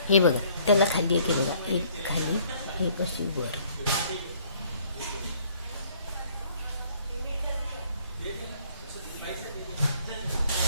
हे बघा, त्याला खाली एक, हे बघा, एक खाली, हे अशी वर.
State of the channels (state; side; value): inverted; both; correlation -0.61